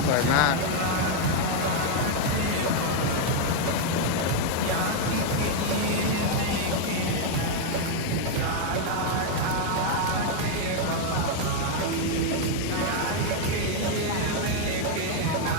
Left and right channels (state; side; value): different; both; correlation 0.00